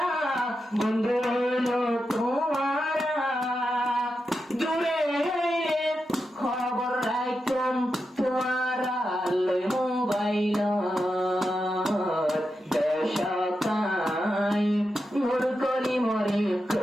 বন্ধু হইলো তোমারা, দূরে হইলে খবর রাখতাম তোমারা লই মোবাইল। বেশকায় নূর করি মরে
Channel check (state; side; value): normal; both; correlation 0.88